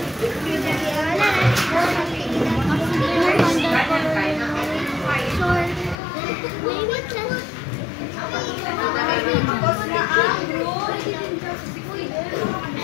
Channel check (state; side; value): drops out; right; at 6.0 s